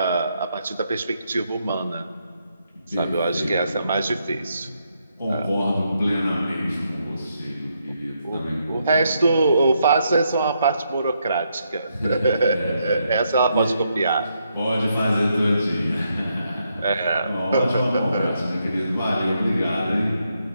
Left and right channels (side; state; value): both; inverted; correlation -0.78